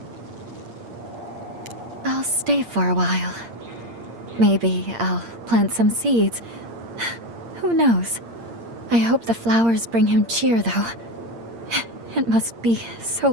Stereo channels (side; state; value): left; late; 8.7 ms